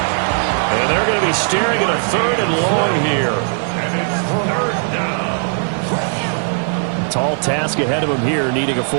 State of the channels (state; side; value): silent; left; digital silence